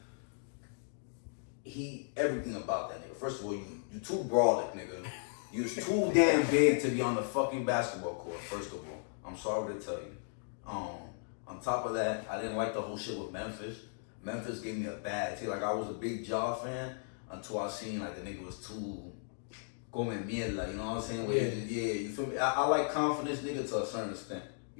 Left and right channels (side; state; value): right; silent; digital silence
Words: Everything about that nigga. First of all, you too brolic, nigga. You was too damn big to be on the fucking basketball court, first of all. I'm sorry to tell you. On top of that, I didn't like the whole shit with Memphis. Memphis gave me a bad taste. Like, I was a big Ja fan until I seen, like, the nigga was too come mierda, you know what I'm saying? You feel me? I like confidence, nigga, to a certain extent.